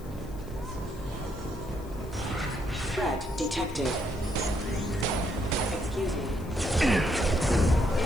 Threat detected. Excuse me.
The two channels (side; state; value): left; noise; hiss, 23 dB below the sound